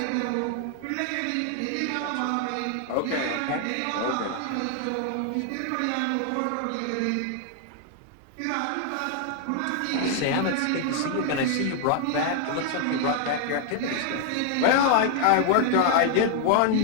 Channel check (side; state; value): both; different; correlation 0.00